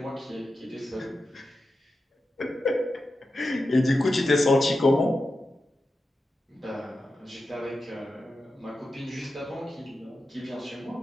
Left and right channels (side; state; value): both; normal; correlation 0.91